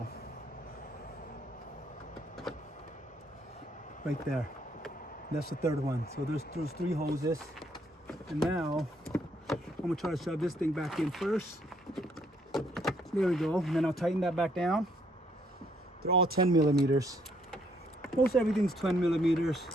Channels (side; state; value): both; normal; correlation 0.69